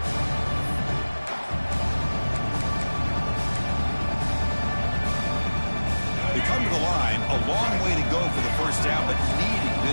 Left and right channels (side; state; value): both; inverted; correlation -1.00